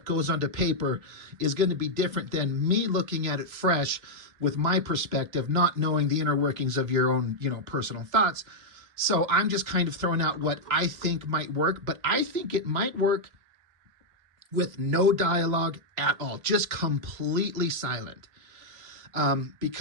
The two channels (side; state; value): left; late; 3.0 ms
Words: goes onto paper is going to be different than me looking at it fresh with my perspective, not knowing the inner workings of your own, personal thoughts. So I'm just kind of throwing out what I think might work, but I think it might work with no dialogue at all, just completely silent.